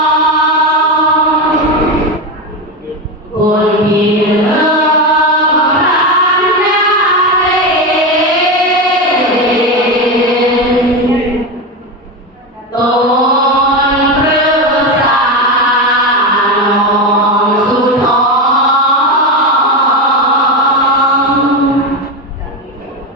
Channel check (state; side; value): normal; both; correlation 0.16